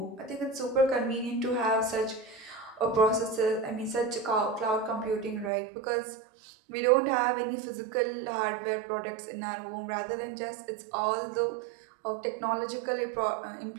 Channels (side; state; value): left; drops out; at 5.5 s